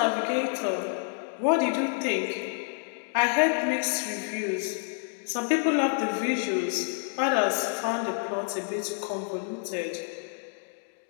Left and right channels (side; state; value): right; silent; 56 dB below the other